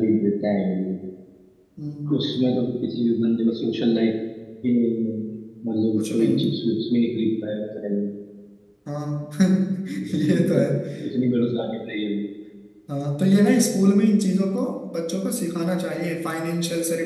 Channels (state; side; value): identical; both; correlation 1.00